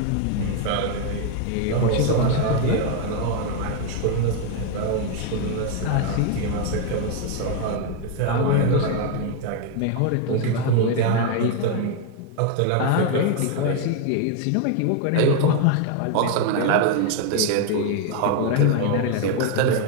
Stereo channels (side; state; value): both; different; correlation 0.01